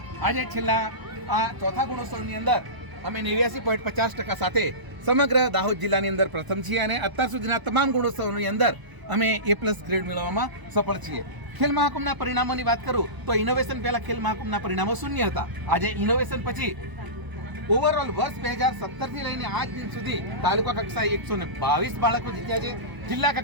આજે છેલ્લા આ ચોથા ગુણોત્સવની અંદર અમે 89.50% સાથે સમગ્ર દાહોદ જિલ્લાની અંદર પ્રથમ છીએ અને અત્યાર સુધીના તમામ ગુણોત્સવની અંદર અમે A+ ગ્રેડ મેળવવામાં સફળ છીએ. ખેલ મહાકુંભના પરિણામોની વાત કરું તો ઇનોવેશન પહેલા ખેલ મહાકુંભના પરિણામો 0 હતા. આજે ઇનોવેશન પછી ઓવરઓલ વર્ષ 2017થી લઈને આજ દિન સુધી તાલુકા કક્ષાએ 122 બાળકો જીત્યા છે. જિલ્લા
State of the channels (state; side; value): late; left; 1.0 ms